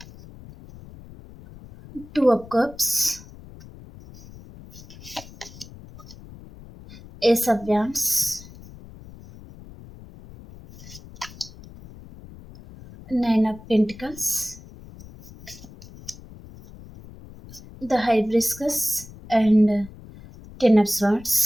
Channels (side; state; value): left; noise; rumble, 18 dB below the sound